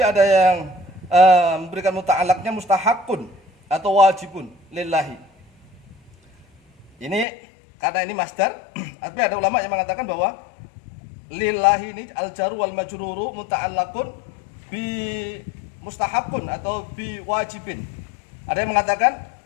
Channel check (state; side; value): drops out; right; at 7.2 s